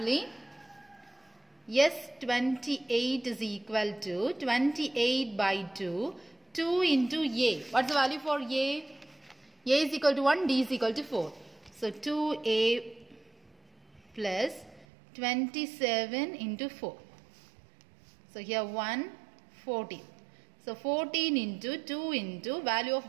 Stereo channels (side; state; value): left; drops out; at 14.9 s